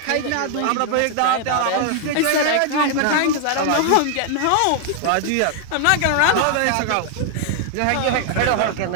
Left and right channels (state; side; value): different; both; correlation 0.00